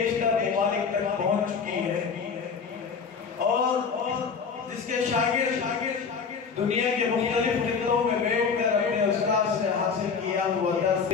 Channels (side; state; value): right; quieter; 5.8 dB